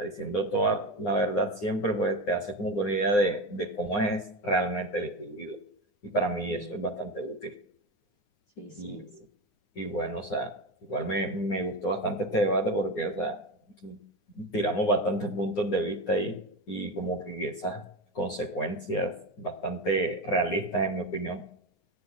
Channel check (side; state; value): right; late; 9.7 ms